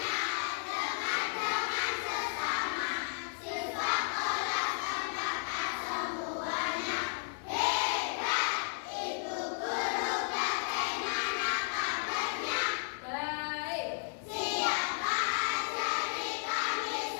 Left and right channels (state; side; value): silent; right; digital silence